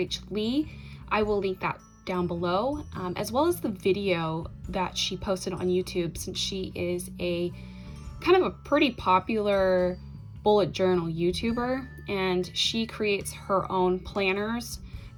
Lee. I will link that down below, as well as the video that she posted on YouTube, since she is a kind of a pretty popular bullet journal YouTuber, and she creates her own planners. I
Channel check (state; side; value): identical; both; correlation 1.00